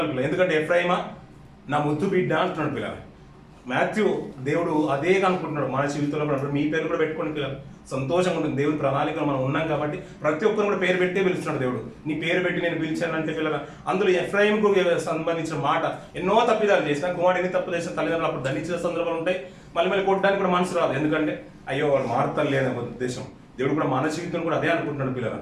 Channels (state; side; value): identical; both; correlation 1.00